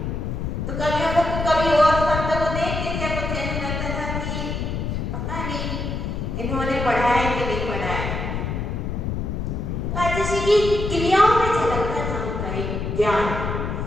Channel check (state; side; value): noise; left; rumble, 3 dB below the sound